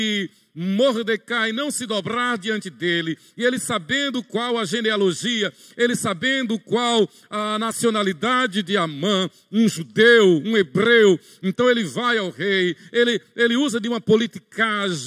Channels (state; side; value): identical; both; correlation 1.00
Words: Mordecai não se dobrar diante dele, e ele sabendo qual a genealogia, ele sabendo qual a nacionalidade de Amã, um judeu, um hebreu, então ele vai ao rei, ele usa de uma